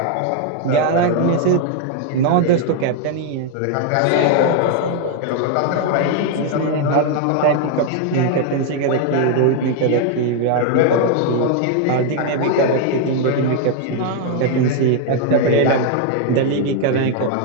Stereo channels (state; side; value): different; both; correlation 0.00